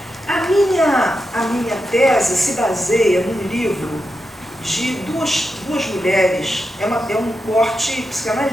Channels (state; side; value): normal; both; correlation 0.88